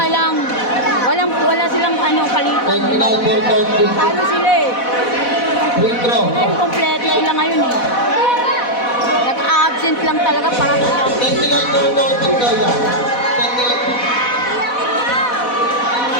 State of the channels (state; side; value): late; right; 4.1 ms